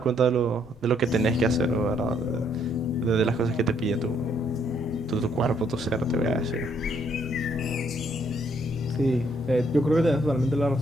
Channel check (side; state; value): left; noise; rumble, 24 dB below the sound